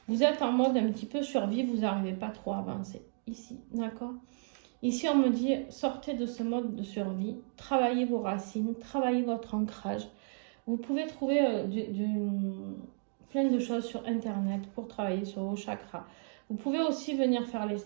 Vous êtes en mode un petit peu survie, vous n'arrivez pas trop à avancer. Ici, d'accord ? Ici, on me dit, sortez de ce mode de survie, travaillez vos racines, travaillez votre ancrage. Vous pouvez trouver plein de choses sur Internet pour travailler sur vos chakras. Vous pouvez aussi venir faire les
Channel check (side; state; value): left; silent; 56 dB below the other